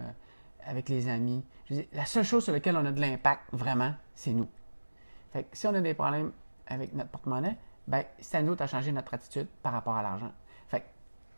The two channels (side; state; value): both; inverted; correlation -1.00